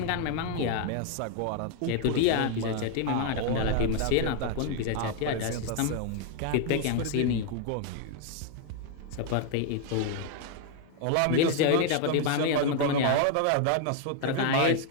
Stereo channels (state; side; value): different; both; correlation 0.00